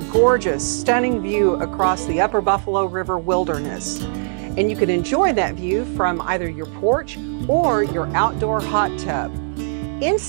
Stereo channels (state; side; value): silent; left; digital silence